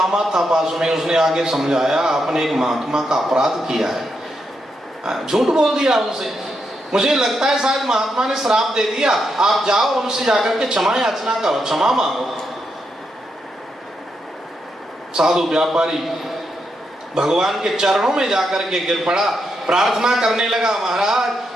था पास में, उसने आगे समझाया आपने एक महात्मा का अपराध किया है, झूठ बोल दिया उनसे। मुझे लगता है शायद महात्मा ने श्राप दे दिया, आप जाओ उनसे जाकर के क्षमा याचना करो, क्षमा मांगो। साधु व्यापारी भगवान के चरणों में जाकर के गिर पड़ा, प्रार्थना करने लगा,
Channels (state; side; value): normal; both; correlation 0.82